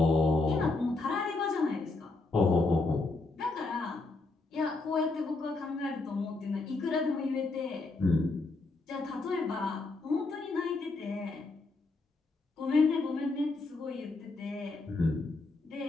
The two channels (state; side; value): quieter; right; 3.4 dB